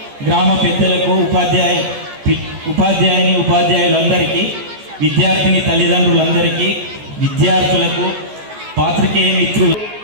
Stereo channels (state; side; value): late; left; 14 ms